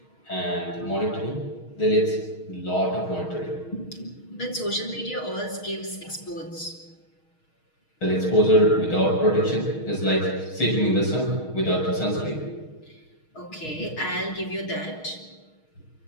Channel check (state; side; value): late; right; 6.4 ms